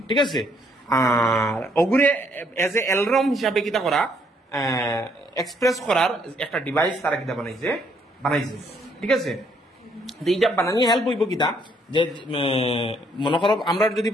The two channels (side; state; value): both; normal; correlation 0.69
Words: ঠিক আছে আর ওগুরে এজ এ অ্যালার্ম হিসাবে কিটা করা এক্সপ্রেস করার একটা ডিভাইস তারা কিটা বানাইছে ঠিক আছে এইটা বানানি হেল্প হইব কিটা যে মনে করো আমরা যদি